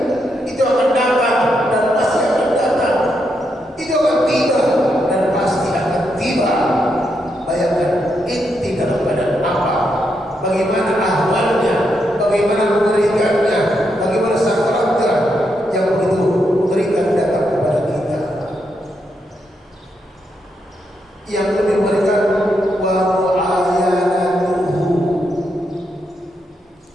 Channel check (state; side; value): normal; both; correlation 0.81